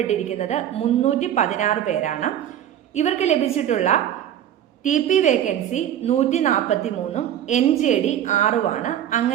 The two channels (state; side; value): quieter; left; 10.7 dB